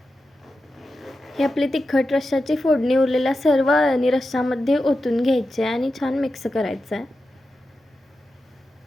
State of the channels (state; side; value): normal; both; correlation 0.91